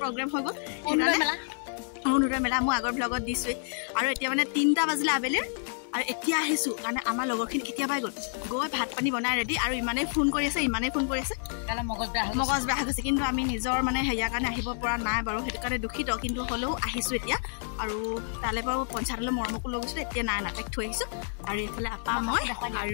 প্ৰগ্ৰাম হৈ গ'ল অনুৰাধা মেলা মই আগৰ ব্লগত দিছো আৰু এতিয়া মানে 3টা বাজিলে আবেলি আৰু এতিয়া আহিছো কাৰণে আমাৰ লগৰখিনি কেতিয়া পাই গ'ল গৈ ভাত পানী বনাই ৰেডি আৰু ইমানে ফোন কৰি আছে কালা মগজ বেয়া হৈছে কিন্তু আমি নিজৰ মানে হেয়া কাৰণে আহিব পৰা নাই বাৰু হেতু কাৰণে দুখিত কিন্তু হলেও আহিছো এতিয়া আৰু তালে বাৰু পঞ্চায়তলৈ মৰমকো লৈ গৈছো এতিয়া নাই নাটেক থৈ আহিছো আৰু এফালে আপা মই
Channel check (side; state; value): right; silent; 59 dB below the other